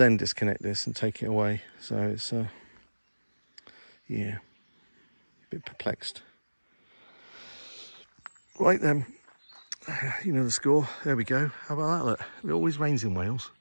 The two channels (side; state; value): both; inverted; correlation -1.00